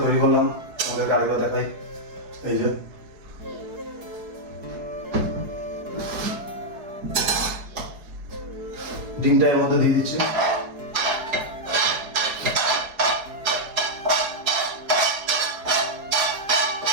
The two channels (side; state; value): left; late; 4.7 ms